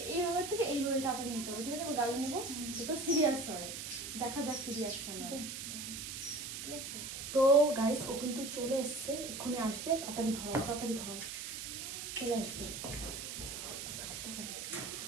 এইভাবে থেকে এইভাবে তাড়াতাড়ি নিতে হবে, ঠিক আছে? গালে নেবো তো সিরিয়াস হয়, দেখা যাক কি রিয়াকশন হয়, ঠিক আছে? তো গাইস, ও কিন্তু চলে এসছে, এক্ষুনি আসবে। তাড়াতাড়ি ধরো, তাড়াতাড়ি ধরো, চলে আসবে।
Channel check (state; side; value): noise; right; hiss, 7 dB below the sound